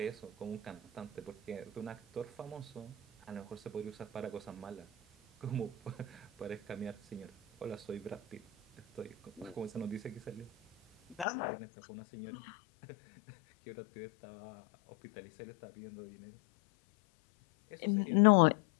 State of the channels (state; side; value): drops out; right; at 11.2 s